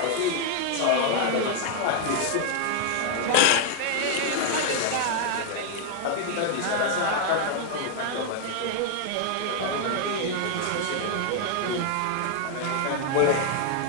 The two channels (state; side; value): different; both; correlation 0.00